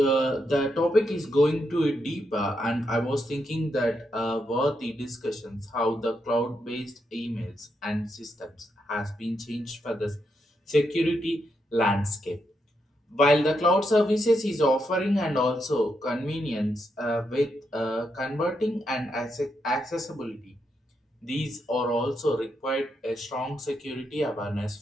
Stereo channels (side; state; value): both; normal; correlation 0.81